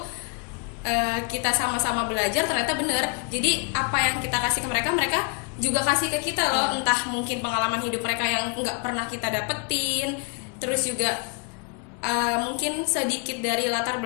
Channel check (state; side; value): quieter; right; 34.4 dB